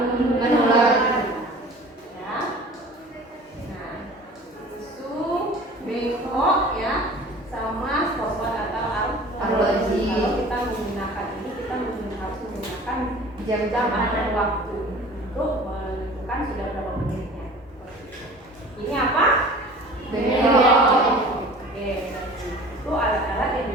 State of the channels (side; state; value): both; normal; correlation 0.44